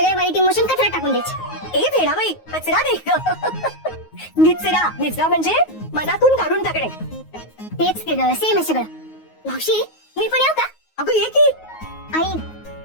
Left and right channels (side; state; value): right; late; 9.4 ms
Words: वाईट इमोशन कचरा टाकून द्यायचे. ए भेडाबाई, कचरा नाही निचरा. निचरा म्हणजे मनातून काढून टाकणे. तेच ते ग, सेम आहे सगळं. मावशी मी पण येऊ का? अगं ये की. आई